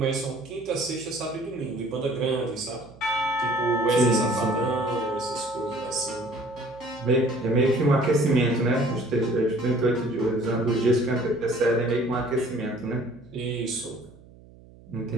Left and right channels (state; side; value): noise; right; hum, 23 dB below the sound